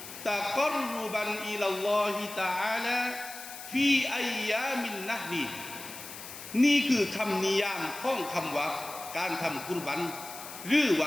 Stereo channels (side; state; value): left; noise; hiss, 12 dB below the sound